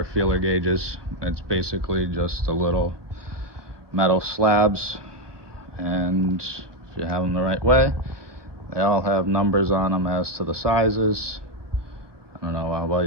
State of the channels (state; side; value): late; left; 1.2 ms